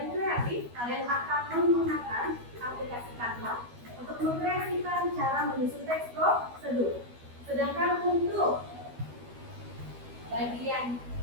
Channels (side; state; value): left; late; 12 ms